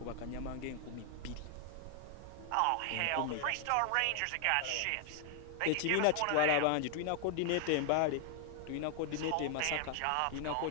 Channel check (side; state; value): both; different; correlation 0.00